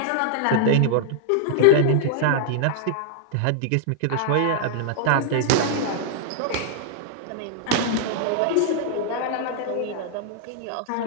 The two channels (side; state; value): both; different; correlation -0.01